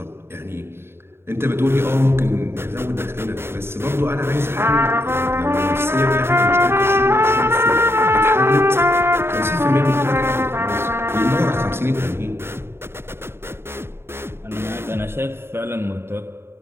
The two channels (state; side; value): late; left; 0.12 ms